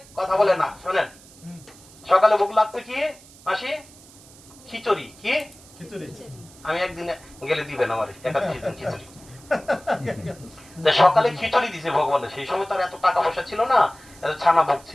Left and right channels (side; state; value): right; noise; hiss, 23 dB below the sound